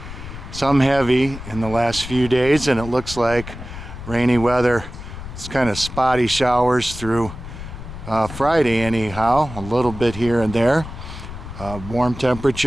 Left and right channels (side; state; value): left; noise; rumble, 11 dB below the sound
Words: some heavy in the last few days, and it looks like rainy weather. It's kind of spotty showers through Friday anyhow, a little bit here and there. Warm